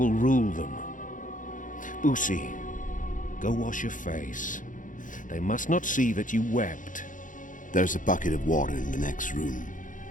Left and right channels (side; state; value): right; late; 0.38 ms